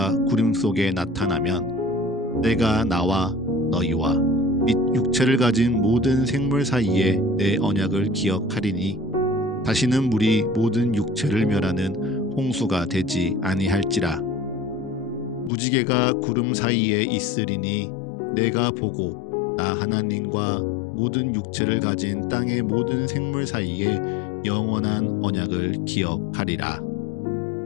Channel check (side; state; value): right; drops out; at 15.5 s